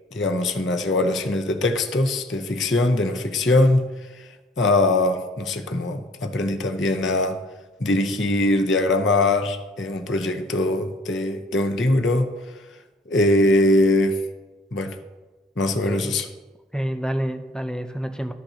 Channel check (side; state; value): both; normal; correlation 0.55